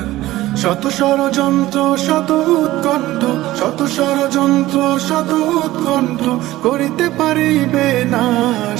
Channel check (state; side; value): quieter; left; 16.4 dB